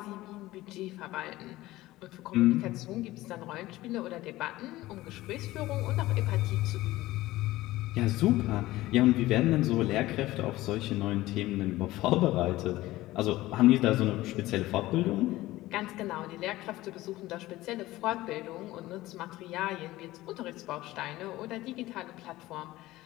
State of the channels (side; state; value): right; quieter; 17.3 dB